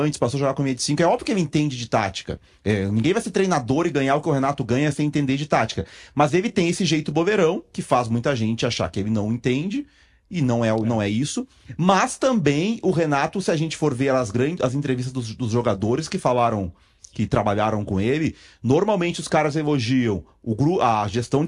passou a jogar com linha de 5, é óbvio que ele entende de tática, ninguém vai ser treinador e ganhar o que o Renato ganha sem entender de tática, mas ele tem esse jeito bobeirão, que faz muita gente achar que ele não entende, e não é isso. Mas também o Renato, se a gente for ver as entrevistas dos jogadores que falaram, que trabalharam com ele, normalmente os caras elogiam a gestão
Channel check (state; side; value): identical; both; correlation 1.00